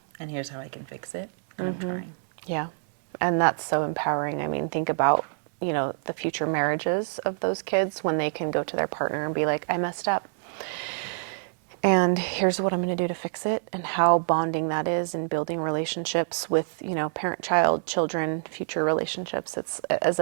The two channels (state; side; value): silent; left; digital silence